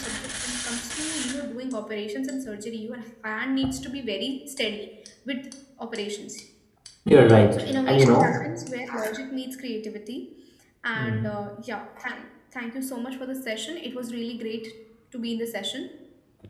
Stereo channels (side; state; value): both; identical; correlation 1.00